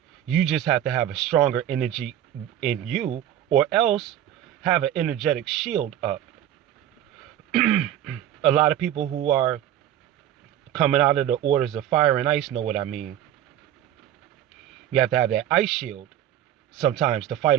You just have to have a stronger energy in you, or else have an energetic shield up. A lot of people who are coming out of the orders of fire and ice know what I mean. You have to have that ice shield sometimes to fight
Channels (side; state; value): left; quieter; 11.4 dB